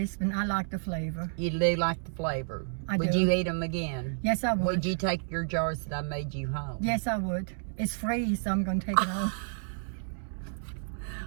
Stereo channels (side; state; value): left; silent; 57 dB below the other